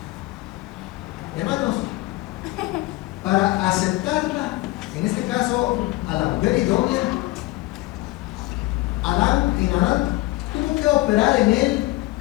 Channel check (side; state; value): right; quieter; 20.1 dB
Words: Hermanos, para aceptarla, en este caso a la mujer idónea, Adán tuvo que operar en él